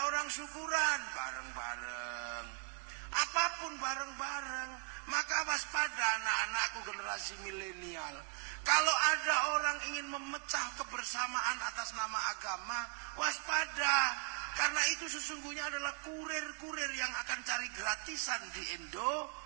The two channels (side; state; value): left; quieter; 39.8 dB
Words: orang syukuran bareng-bareng. Apapun bareng-bareng. Maka waspada anak-anakku generasi milenial. Kalau ada orang ingin memecah kebersamaan atas nama agama, waspada. Karena itu sesungguhnya adalah kurir-kurir yang akan cari gratisan di